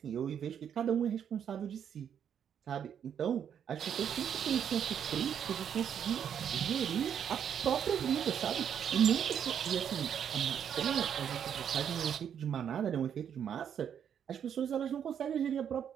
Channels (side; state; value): left; quieter; 8.5 dB